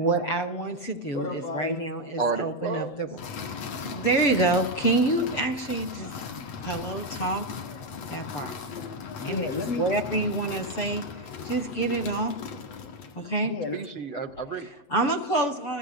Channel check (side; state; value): right; late; 8.0 ms